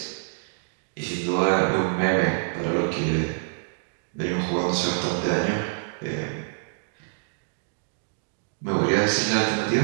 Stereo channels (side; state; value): left; silent; digital silence